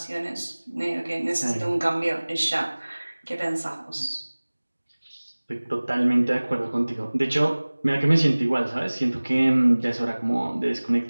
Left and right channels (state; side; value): inverted; both; correlation -1.00